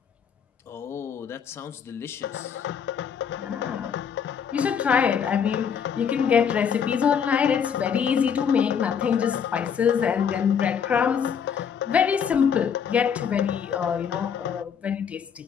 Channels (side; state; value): right; quieter; 7.4 dB